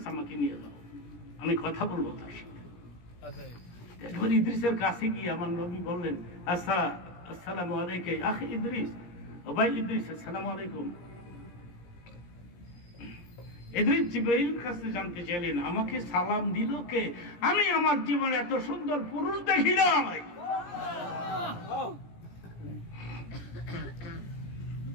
আমাকে নিয়ে যাও, আমি কথা বলবো তার সাথে। একবার ইদ্রিসের কাছে গিয়ে আমার নবী বললেন, আসসালামু আলাইকা আখি ইদ্রিস, ও ভাই ইদ্রিস, আসসালামু আলাইকুম। ইদ্রিস জিবরাইল কাছে জানতে চাইলেন, আমাকে সালাম দিল কে? আমি আমার জীবনে এত সুন্দর পুরুষ দেখি নাই।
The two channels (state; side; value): late; right; 17 ms